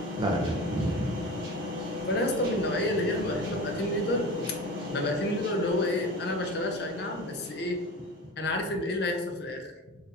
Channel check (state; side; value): normal; both; correlation 0.33